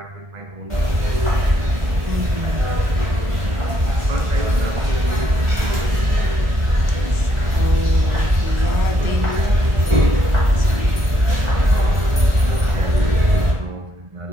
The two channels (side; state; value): left; late; 1.5 ms